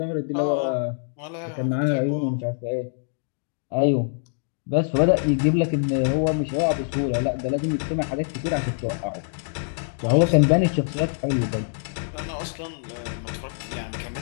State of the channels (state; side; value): silent; right; digital silence